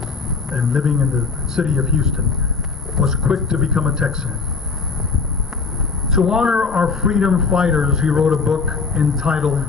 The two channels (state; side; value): quieter; right; 4.8 dB